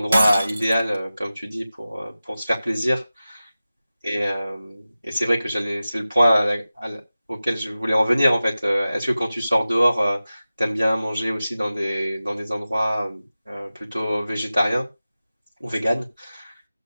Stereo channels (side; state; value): both; inverted; correlation -0.95